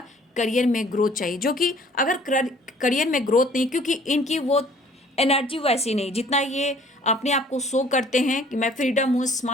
करियर में ग्रोथ चाहिए, जो कि अगर करियर में ग्रोथ नहीं, क्योंकि इनकी वो एनर्जी वैसी नहीं जितना ये अपने आप को शो करते हैं कि मैं फ्रीडम हूँ,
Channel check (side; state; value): both; normal; correlation 0.55